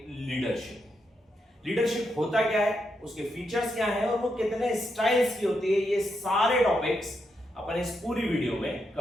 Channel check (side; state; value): both; normal; correlation 0.82